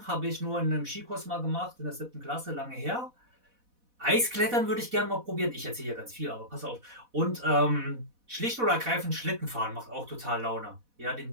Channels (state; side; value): late; left; 4.1 ms